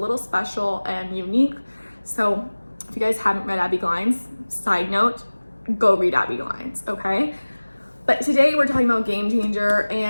special and unique. So if you guys haven't read Abbi Glines, side note, go read Abbi Glines, okay? But today we're talking about Game Changer,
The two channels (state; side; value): inverted; both; correlation -1.00